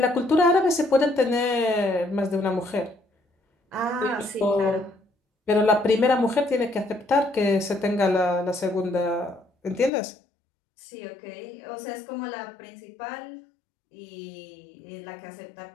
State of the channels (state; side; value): drops out; right; at 9.9 s